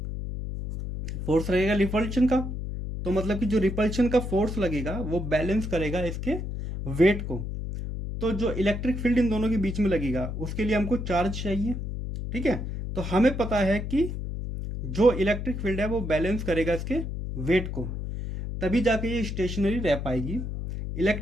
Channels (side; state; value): left; noise; hum, 5 dB below the sound